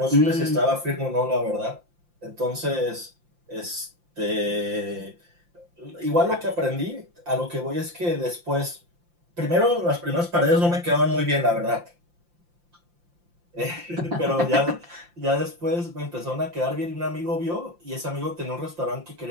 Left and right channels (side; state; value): left; late; 5.8 ms